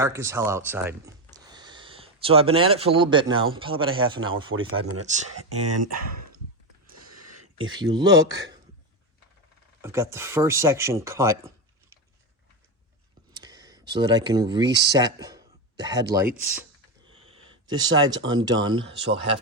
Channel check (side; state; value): both; normal; correlation 0.13